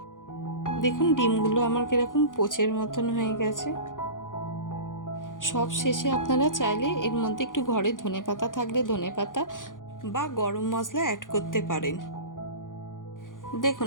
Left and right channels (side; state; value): right; late; 0.88 ms